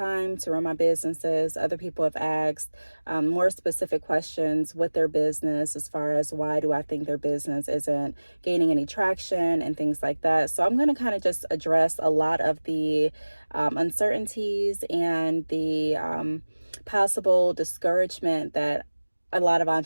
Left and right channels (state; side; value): inverted; both; correlation -1.00